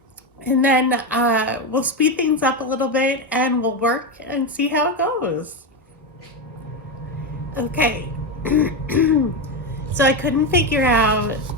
we'll speed things up a little bit and we'll work and see how it goes. Okay, so I couldn't figure out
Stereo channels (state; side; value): normal; both; correlation 0.12